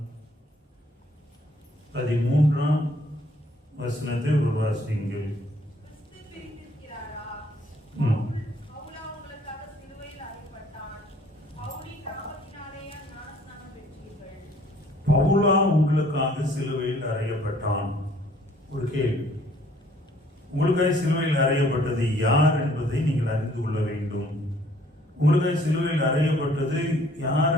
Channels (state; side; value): normal; both; correlation 0.59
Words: 13ஆம் வசனத்தை ஒரு வாசியுங்கள். பவுலா உங்களுக்காக சிலுவையில் அறையப்பட்டான். ஒரு கேள்வி, உங்களுக்காக சிலுவையில் அறையப்பட்டது யார் என்பதை நீங்கள் அறிந்து கொள்ள வேண்டும். உங்களுக்காக சிலுவையில் அறையப்பட்டது யார்